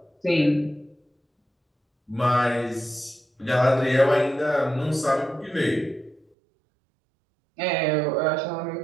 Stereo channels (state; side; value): drops out; left; at 6.2 s